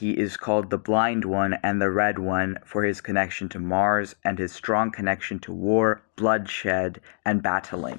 is called the Blind One and the Red One for his connection to Mars and his strong connection to war, bloodshed, and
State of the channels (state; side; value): silent; right; digital silence